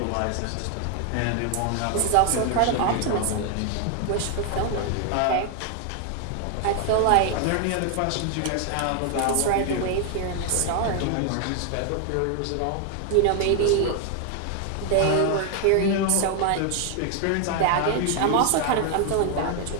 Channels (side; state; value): both; different; correlation 0.00